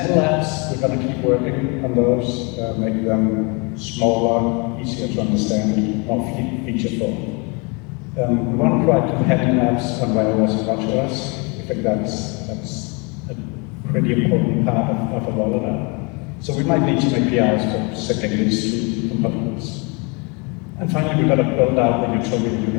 apps, we're going to keep working on those, make them smaller, easier to understand, more featureful. We want to provide companion apps on iOS and watchOS. I think that's a pretty important part of a rollout. So we might need some APIs for setting these two components. And finally, we've got to build out the utility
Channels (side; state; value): right; quieter; 31.1 dB